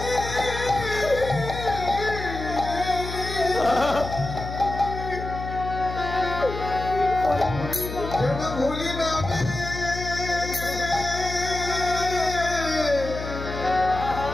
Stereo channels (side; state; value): left; noise; hum, 8 dB below the sound